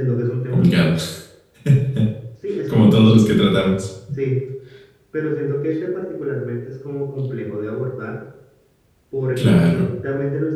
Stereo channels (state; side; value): identical; both; correlation 1.00